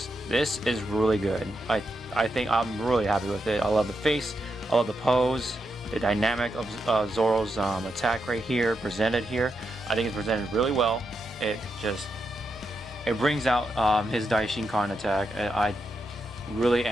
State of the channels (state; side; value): normal; both; correlation 0.85